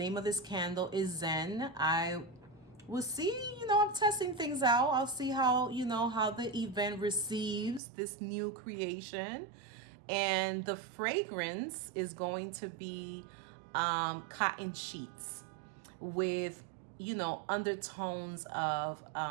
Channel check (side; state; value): left; drops out; at 7.8 s